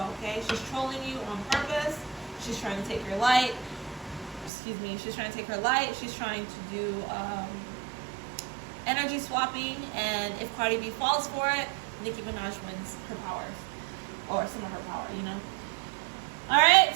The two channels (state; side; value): drops out; left; at 4.5 s